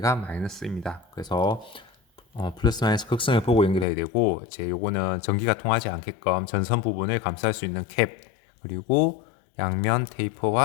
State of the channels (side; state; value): right; drops out; at 3.9 s